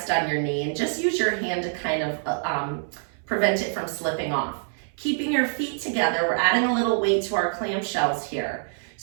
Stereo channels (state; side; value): silent; left; 61 dB below the other